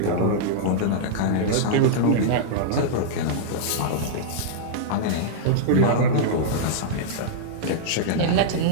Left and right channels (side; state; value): both; different; correlation -0.02